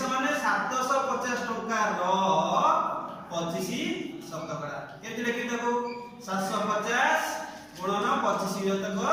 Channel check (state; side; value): identical; both; correlation 1.00